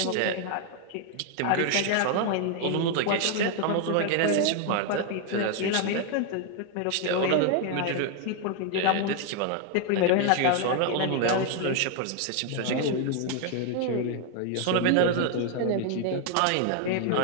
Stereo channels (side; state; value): both; different; correlation 0.01